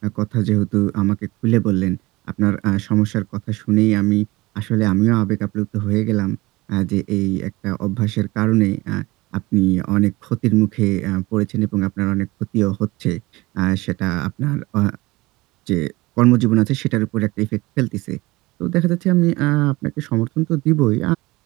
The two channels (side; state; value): left; quieter; 21.1 dB